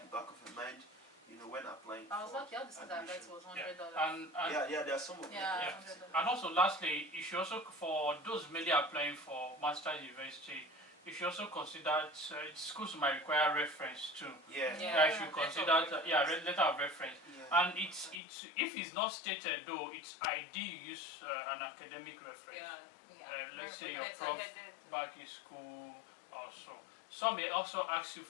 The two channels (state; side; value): drops out; right; at 18.2 s